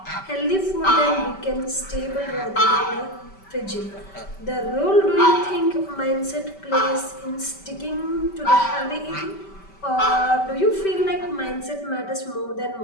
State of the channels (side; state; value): right; late; 5.2 ms